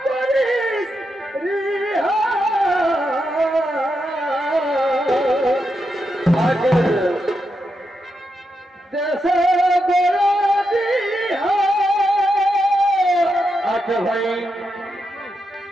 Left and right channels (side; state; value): both; normal; correlation 0.85